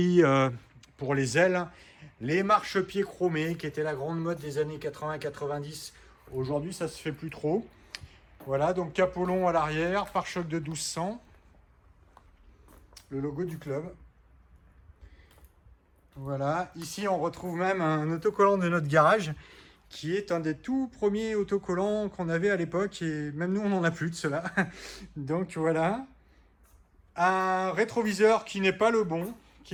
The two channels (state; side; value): identical; both; correlation 1.00